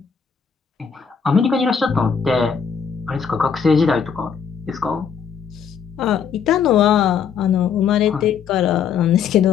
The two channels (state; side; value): quieter; right; 6.9 dB